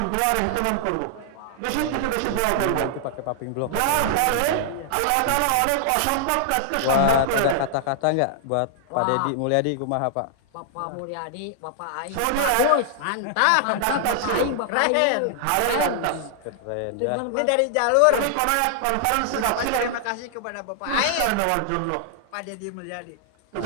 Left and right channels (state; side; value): different; both; correlation -0.01